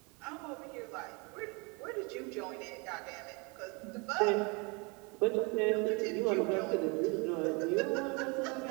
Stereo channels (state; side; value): quieter; left; 30.4 dB